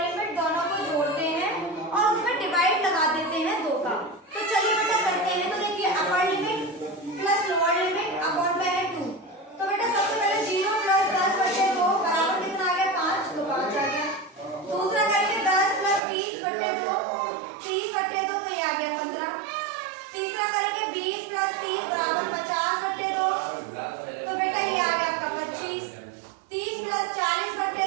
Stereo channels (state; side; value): drops out; left; at 16.0 s